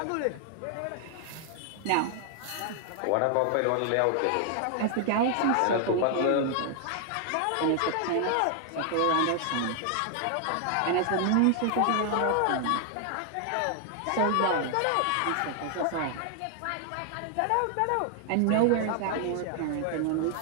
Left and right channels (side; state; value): both; different; correlation 0.00